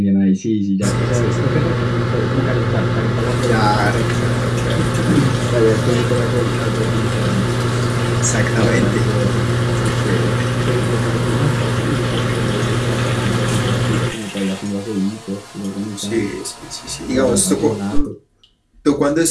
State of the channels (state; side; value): identical; both; correlation 1.00